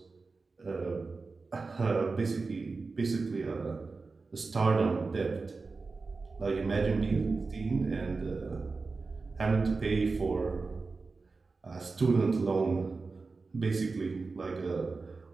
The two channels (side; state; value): left; quieter; 4.1 dB